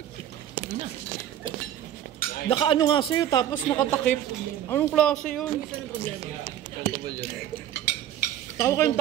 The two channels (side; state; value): left; quieter; 11.3 dB